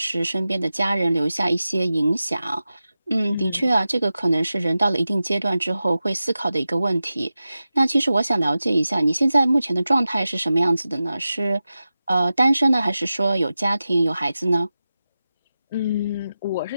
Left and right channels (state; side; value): inverted; both; correlation -0.93